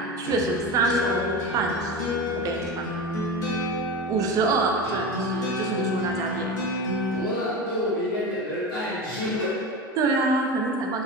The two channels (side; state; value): both; normal; correlation 0.25